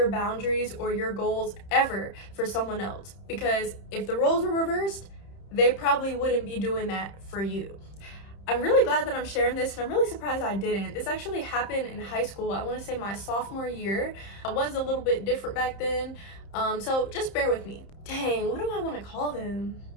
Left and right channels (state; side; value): late; right; 30 ms